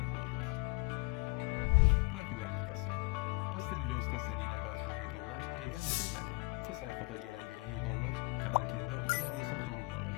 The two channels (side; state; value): right; quieter; 28.6 dB